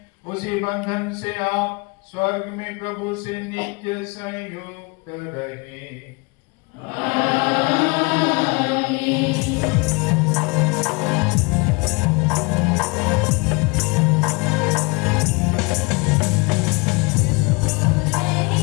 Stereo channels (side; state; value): right; quieter; 28.9 dB